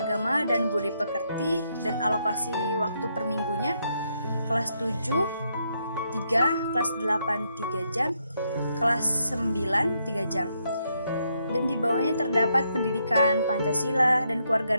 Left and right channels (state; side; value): inverted; both; correlation -0.77